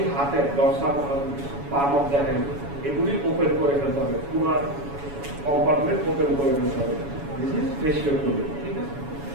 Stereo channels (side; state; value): left; late; 7.1 ms